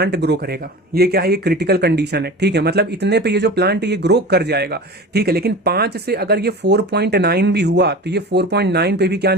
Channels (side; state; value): both; normal; correlation 0.34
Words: ग्रो करेगा। ये क्या है, ये क्रिटिकल कंडीशन है, ठीक है। मतलब इतने पे ये जो प्लांट ये ग्रो कर जाएगा, ठीक है। लेकिन 5 से अगर ये 4.9 भी हुआ तो ये 4.9 पे भी क्या